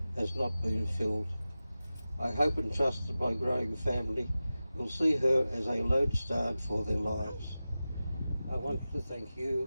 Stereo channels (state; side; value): inverted; both; correlation -0.95